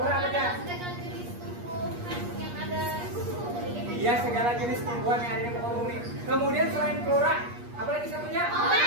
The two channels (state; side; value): late; left; 8.4 ms